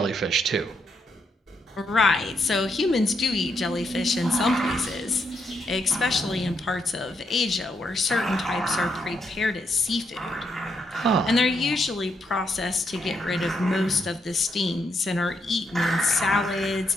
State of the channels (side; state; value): both; normal; correlation 0.78